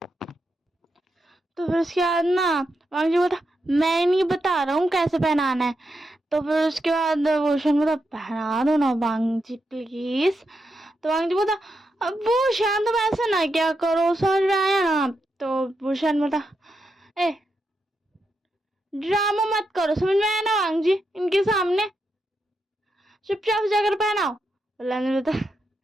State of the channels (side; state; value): both; normal; correlation 0.85